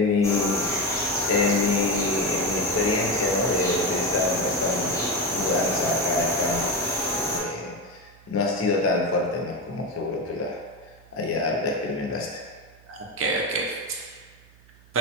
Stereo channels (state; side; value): noise; right; hum, 26 dB below the sound